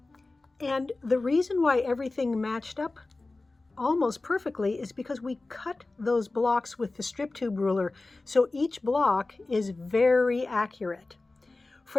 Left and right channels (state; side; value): quieter; right; 3.2 dB